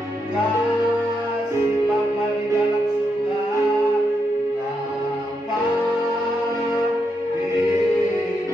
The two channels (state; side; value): normal; both; correlation 0.82